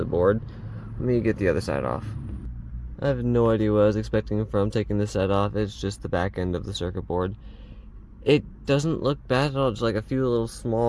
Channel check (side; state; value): both; identical; correlation 1.00